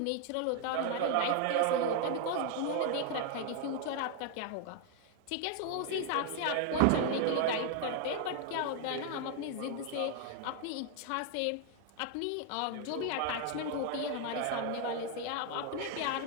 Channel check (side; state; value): both; different; correlation 0.00